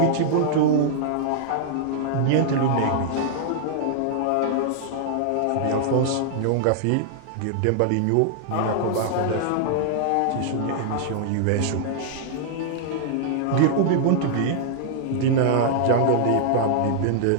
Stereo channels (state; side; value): different; both; correlation -0.01